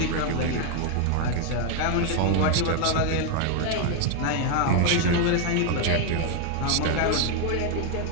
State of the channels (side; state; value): both; different; correlation 0.01